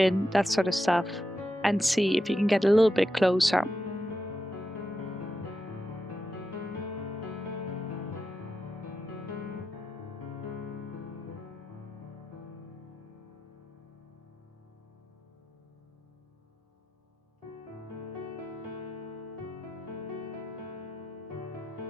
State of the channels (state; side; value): normal; both; correlation 0.88